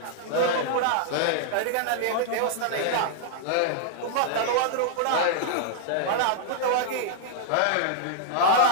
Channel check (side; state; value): both; different; correlation -0.01